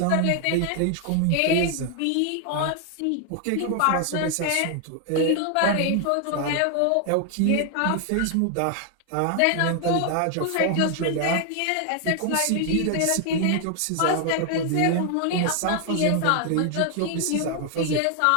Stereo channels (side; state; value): both; different; correlation 0.00